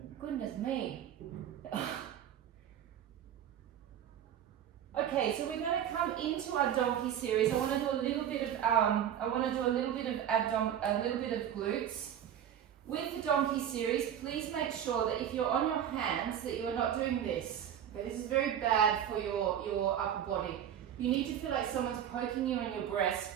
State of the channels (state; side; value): quieter; left; 9.9 dB